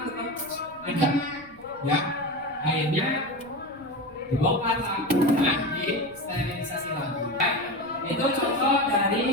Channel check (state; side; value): noise; left; rumble, 26 dB below the sound